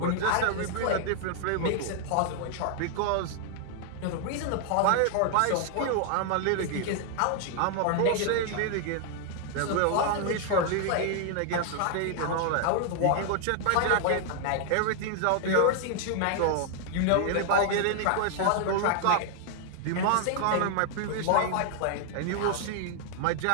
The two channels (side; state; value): both; different; correlation 0.00